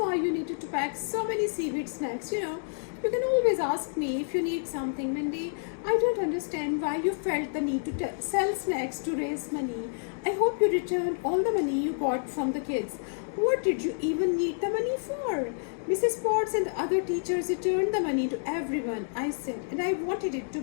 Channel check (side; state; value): right; silent; digital silence